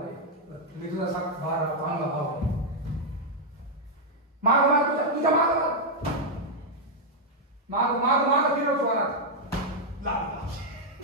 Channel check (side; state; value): both; normal; correlation -0.03